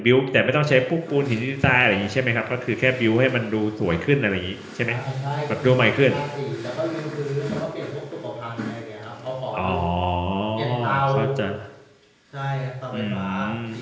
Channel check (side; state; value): both; identical; correlation 1.00